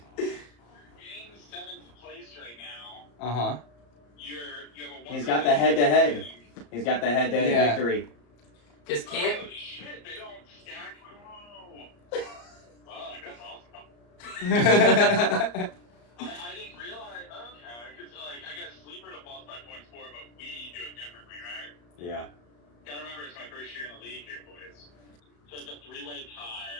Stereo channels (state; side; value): late; right; 34 ms